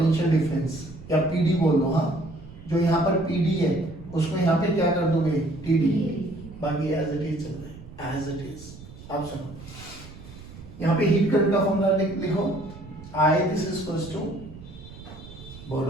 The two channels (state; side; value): noise; right; rumble, 17 dB below the sound